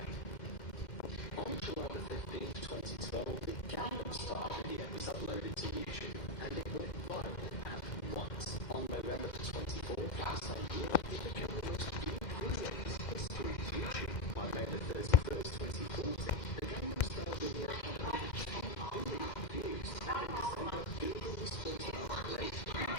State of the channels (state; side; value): late; right; 2.1 ms